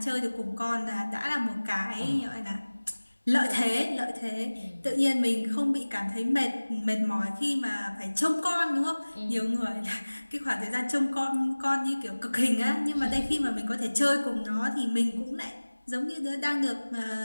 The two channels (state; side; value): inverted; both; correlation -1.00